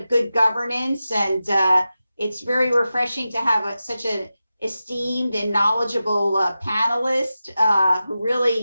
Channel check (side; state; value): both; inverted; correlation -0.93